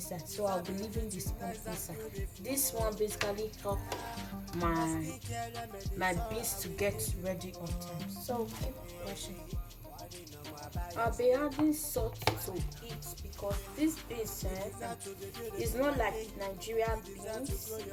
So I'll be leaving the spoon inside. This one basically help my beans to get ready on time. So keep watching. I'll be adding salt to it because this beans is not like Nigerian beans.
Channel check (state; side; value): identical; both; correlation 1.00